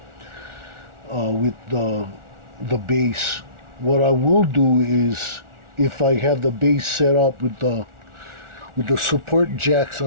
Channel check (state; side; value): late; left; 1.4 ms